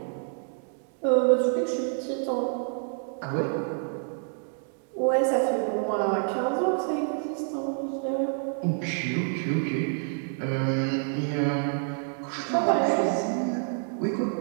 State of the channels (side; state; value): left; silent; 59 dB below the other